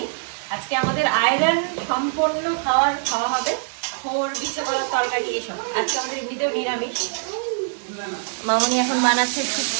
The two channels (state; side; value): silent; left; 63 dB below the other